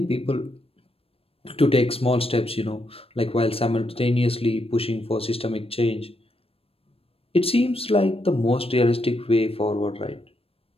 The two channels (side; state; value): right; late; 0.28 ms